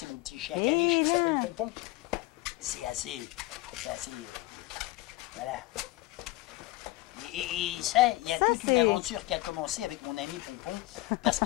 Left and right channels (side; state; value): right; quieter; 19.1 dB